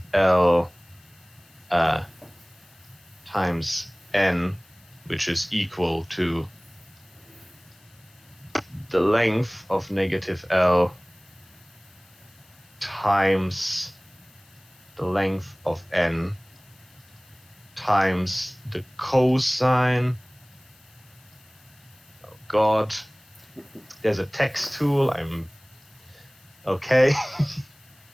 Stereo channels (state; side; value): noise; left; hiss, 29 dB below the sound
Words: L times N, which is equal to the length of negative L times the length of N times the cosine. Oh god. There's a text tool. Okay.